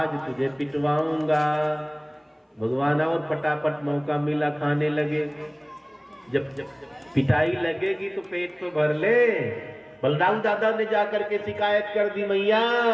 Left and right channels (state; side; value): identical; both; correlation 1.00